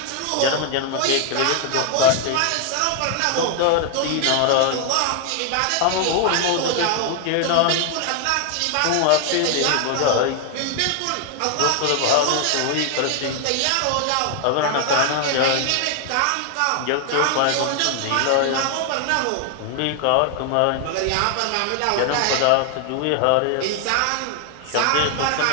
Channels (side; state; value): both; different; correlation 0.00